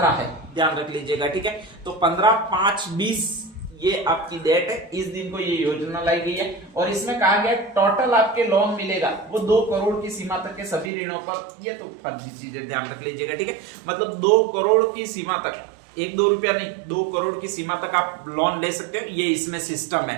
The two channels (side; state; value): left; drops out; at 10.9 s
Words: है, ध्यान रख लीजिएगा, ठीक है। तो 15/5/20 ये आपकी डेट है, इस दिन को ये योजना लाई गई है। और इसमें कहा गया टोटल आपके लोन मिलेगा वो 2 करोड़ की सीमा तक के सभी ऋणों पर। ये तो फर्जी चीजें, ध्यान रख लीजिएगा, ठीक है। मतलब 2 करोड़ की सीमा तक, 1-2 रुपया नहीं, 2 करोड़ की सीमा तक आप लोन ले सकते हो। ये इसमें सिस्टम है।